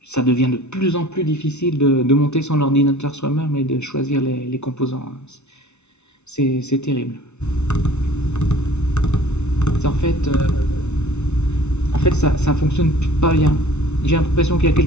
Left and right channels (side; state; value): right; late; 0.82 ms